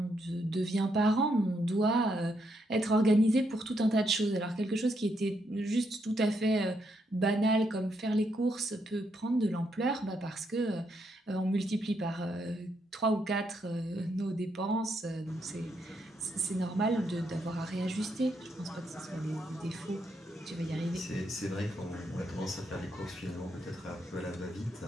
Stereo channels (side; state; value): both; normal; correlation 0.78